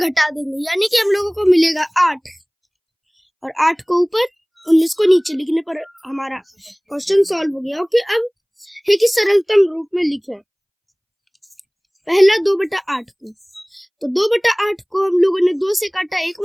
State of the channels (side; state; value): both; identical; correlation 1.00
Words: देंगे, यानी कि हम लोगों को मिलेगा 8, और 8 को ऊपर 19 को नीचे लिखने पर हमारा क्वेश्चन सॉल्व हो गया। ओके, अब है कि सरलतम रूप में लिखें। पहला 2/8 को, तो 2/8 को हम लोगों ने 2 से काटा एक